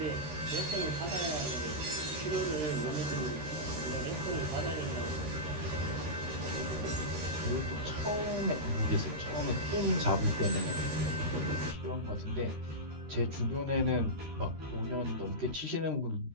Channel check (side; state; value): left; late; 13 ms